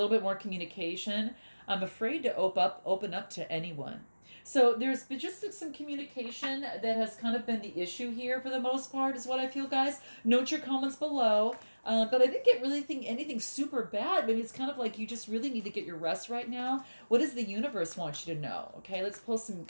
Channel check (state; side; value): inverted; both; correlation -1.00